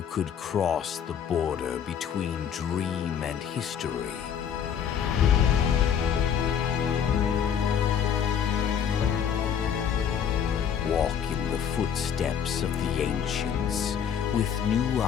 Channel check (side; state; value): right; quieter; 8.2 dB